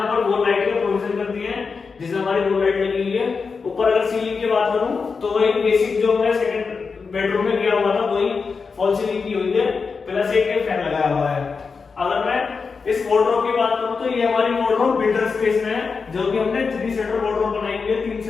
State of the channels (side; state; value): right; quieter; 5.0 dB